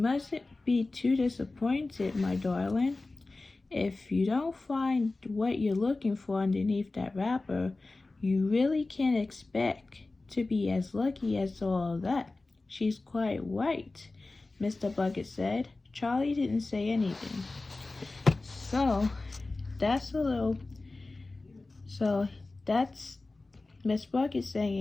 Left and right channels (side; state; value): right; quieter; 3.3 dB